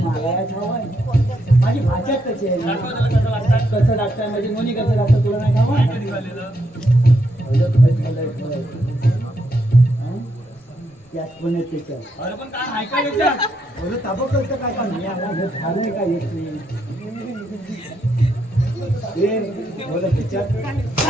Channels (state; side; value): normal; both; correlation 0.78